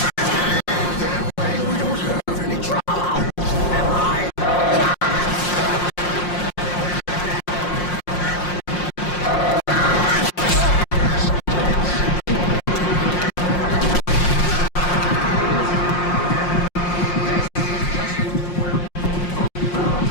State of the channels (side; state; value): right; late; 5.6 ms